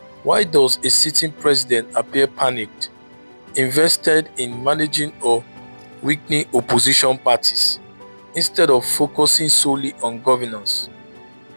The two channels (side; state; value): both; inverted; correlation -1.00